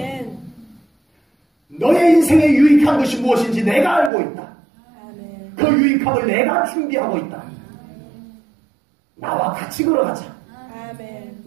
너의 인생에 유익한 것이 무엇인지 내가 알고 있다. 그 유익함을 내가 준비하고 있다. 나와 같이 걸어가자.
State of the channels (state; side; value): drops out; left; at 4.1 s